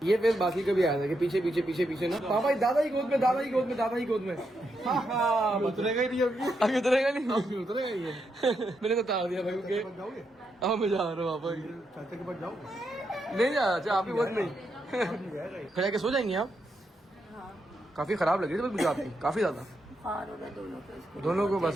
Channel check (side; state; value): both; normal; correlation 0.82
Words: ये फेस बाकी का भी आया था कि पीछे पीछे पीछे पीछे ना। पापा दादा ही गोद में, दादा ही गोद में, दादा ही गोद में। हाँ उतरेगा ही नहीं अभी। अभी उतरेगा नहीं। उतरेगा ही नहीं। मैंने तो तार दिया भाई उनके। जाओगे? अब मैं जा रहा हूँ पापा की। चाचा के पास जाओगे? नहीं जा, अच्छा आपकी गोद में खड़ा के सो जाएंगे आप? काफी खराब लग रही थी बस मुझे आपकी, काफी ज्यादा। दोनों को